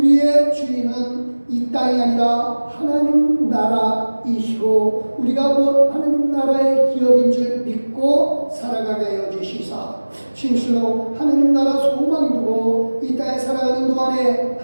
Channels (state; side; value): inverted; both; correlation -1.00